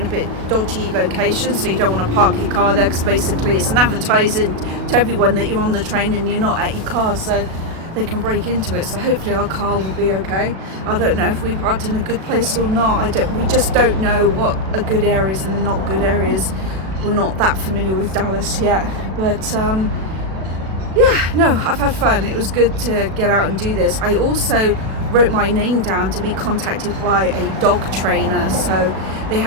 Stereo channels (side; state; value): left; late; 37 ms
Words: a bit dodgy locations, so you don't want to park your car there, because basically it's an advertising to everyone that you're on the train and you're not at your car, so they can break into it. So hopefully our car will be okay. I don't know if we've parked in a good place or not. We just don't know what are good areas and not good areas. We're not that familiar with Dallas yet, but yeah, no, I've had fun. It was good to get out and do this. I also wrote my name down to be contacted by a dog trainer. So they